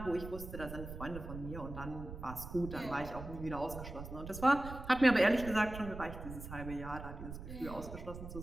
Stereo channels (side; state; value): right; noise; rumble, 10 dB below the sound